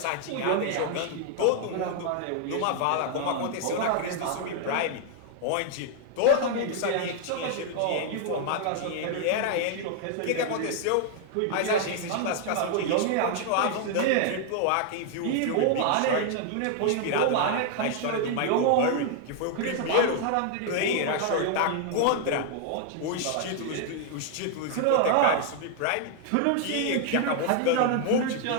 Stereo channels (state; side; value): different; both; correlation 0.00